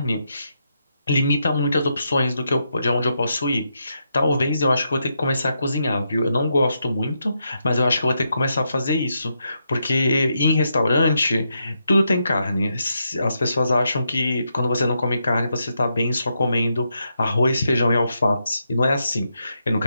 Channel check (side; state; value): both; inverted; correlation -0.82